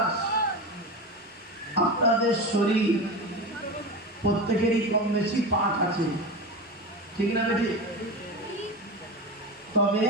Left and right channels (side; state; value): both; normal; correlation 0.24